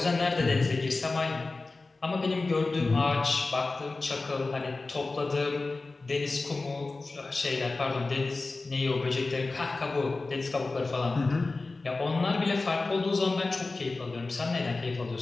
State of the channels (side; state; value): right; quieter; 3.5 dB